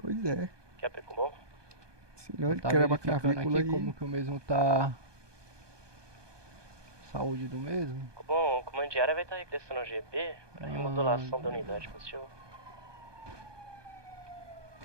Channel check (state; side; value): late; left; 1.2 ms